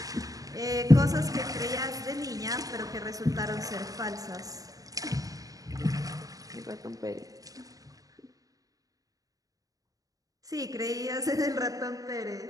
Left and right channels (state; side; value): late; left; 0.17 ms